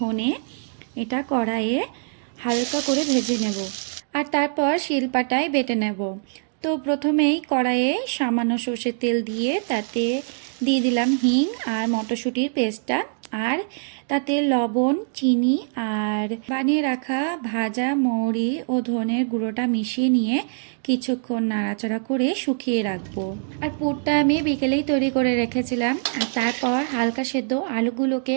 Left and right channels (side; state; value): left; silent; digital silence